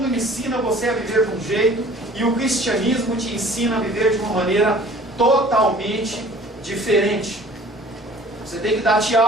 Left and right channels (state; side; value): normal; both; correlation 0.49